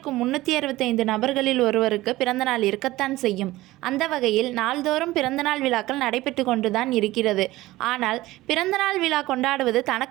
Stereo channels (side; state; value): left; quieter; 17.7 dB